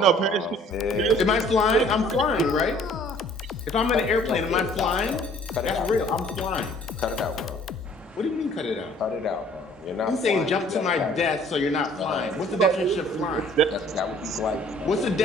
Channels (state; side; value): normal; both; correlation 0.55